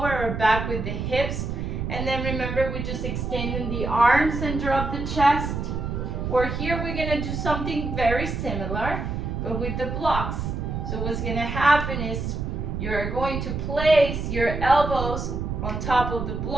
or back with the hips. And then remember, we're just extending the arms and drop the chest. Or here we're gonna do something very similar, but with the blocks. So what's gonna happen is you're going to place your elbows on top of the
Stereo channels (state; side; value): noise; right; rumble, 3 dB below the sound